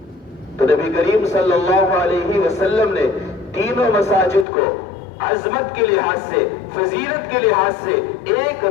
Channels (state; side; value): drops out; right; at 4.5 s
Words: تو نبی کریم صلی اللہ علیہ وسلم نے تینوں مساجد کو عظمت کے لحاظ سے، فضیلت کے لحاظ سے ایک